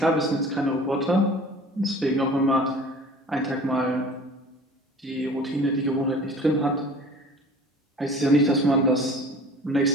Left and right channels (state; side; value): normal; both; correlation 0.44